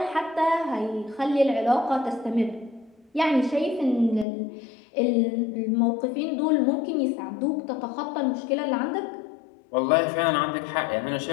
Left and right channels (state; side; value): drops out; right; at 4.2 s